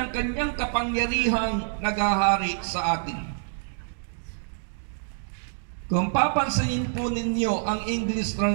kanyang kapangyarihang naghahari sa atin." Kung papansinin po ninyo ang English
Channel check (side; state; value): left; silent; digital silence